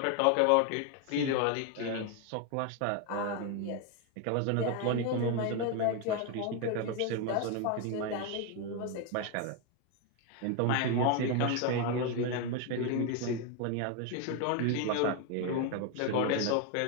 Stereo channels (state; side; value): different; both; correlation 0.01